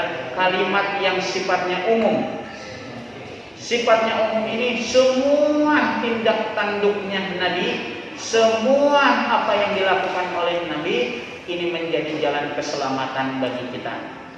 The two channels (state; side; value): identical; both; correlation 1.00